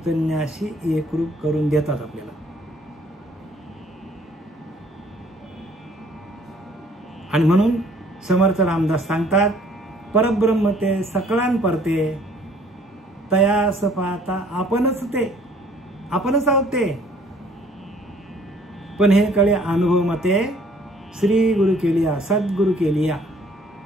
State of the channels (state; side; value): normal; both; correlation 0.58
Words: एकरूप करून देतात आपल्याला. आणि म्हणून समर्थ रामदास सांगतात, परब्रह्म ते सकळान परते, तयास पाहता आपणच ते, आपणच आहोत ते. पण हे कळे अनुभव मते श्री गुरु केलिया, सद्गुरु केलिया.